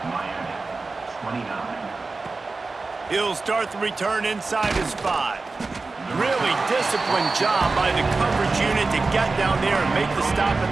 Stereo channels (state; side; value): quieter; left; 3.8 dB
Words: He'll start the return inside his 5. Really disciplined job by the coverage unit to get down there and make the stop